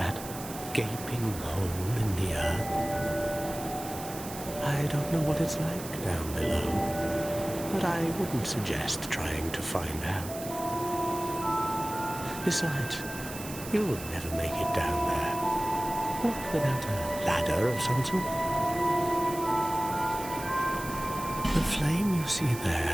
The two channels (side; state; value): right; noise; hiss, 12 dB below the sound